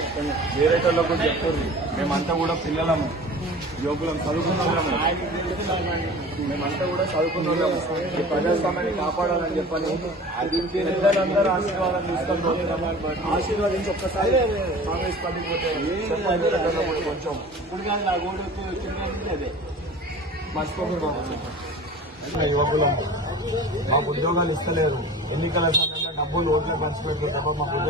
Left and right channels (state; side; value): normal; both; correlation 0.40